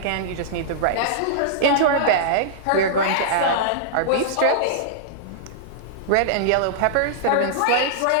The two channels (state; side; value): different; both; correlation -0.02